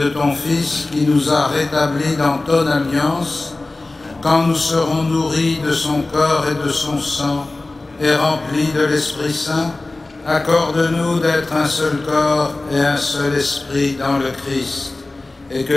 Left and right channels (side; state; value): right; quieter; 3.1 dB